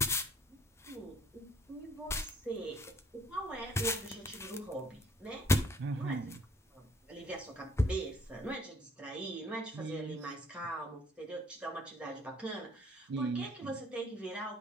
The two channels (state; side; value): normal; both; correlation 0.61